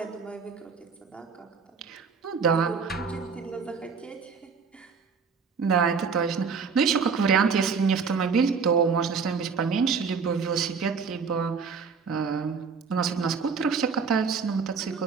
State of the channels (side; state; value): left; quieter; 5.6 dB